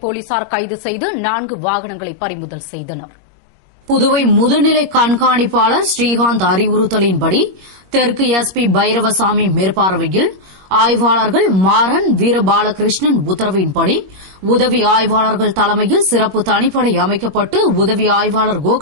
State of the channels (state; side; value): late; left; 21 ms